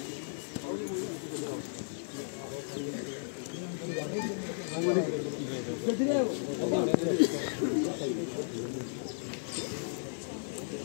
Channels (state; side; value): silent; right; 55 dB below the other